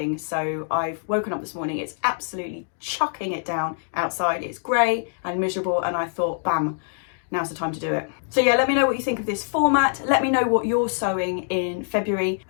so I've woken up this morning. It's absolutely chucking it down outside. It's grey and miserable, and I thought, bam, now's the time to do it. So yeah, let me know what you think of this format. Let me know what you're sowing in February.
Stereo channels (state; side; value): silent; right; digital silence